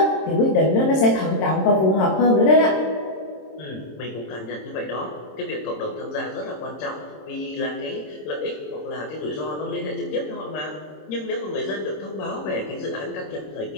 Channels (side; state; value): right; late; 26 ms